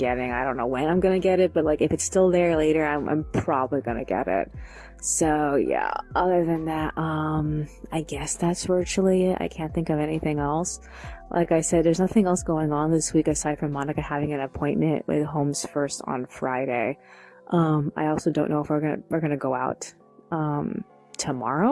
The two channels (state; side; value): identical; both; correlation 1.00